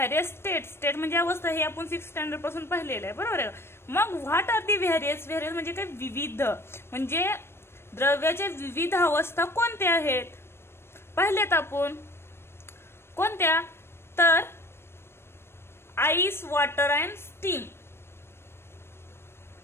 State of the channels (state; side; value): late; right; 0.12 ms